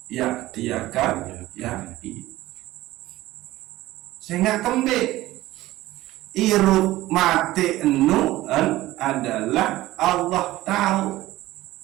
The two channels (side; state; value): left; quieter; 16.7 dB